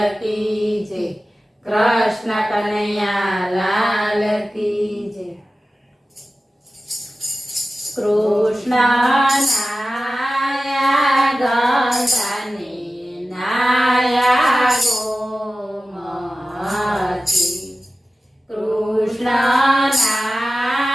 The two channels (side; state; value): both; normal; correlation 0.95